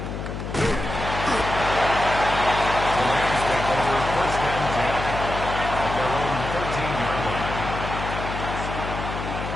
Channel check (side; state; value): left; noise; hum, 6 dB below the sound